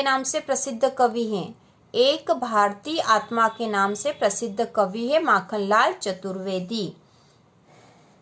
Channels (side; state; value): both; identical; correlation 1.00